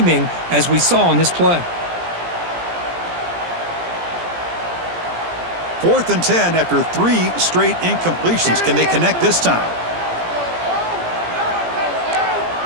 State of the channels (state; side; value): late; left; 17 ms